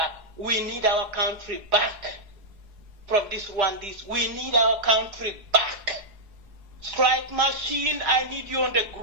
We need our country back from this Rwandese. We need our country back. Strike Machine, I need you on the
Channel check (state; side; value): late; left; 4.8 ms